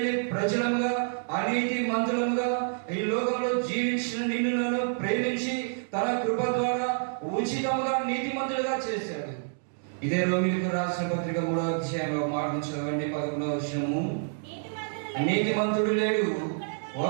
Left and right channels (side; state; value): left; silent; digital silence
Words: ప్రజలముగా, అనీతి మంతులముగా ఈ లోకంలో జీవించిన నిన్ను నన్ను ప్రేమించి తన కృప ద్వారా ఉచితముగా నీతిమంతులుగా చేశాడు. ఇదే రోమీయులకు రాసిన పత్రిక 3వ అధ్యాయంలో మాటను చదవండి. 11వ వచనము. నీతిమంతుడు లేడు,